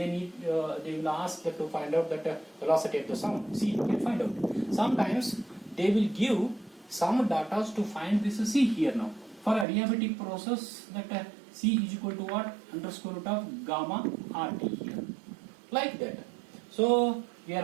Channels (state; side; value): drops out; left; at 9.7 s